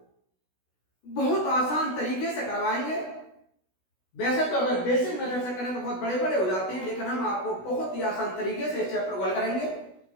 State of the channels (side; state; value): right; late; 16 ms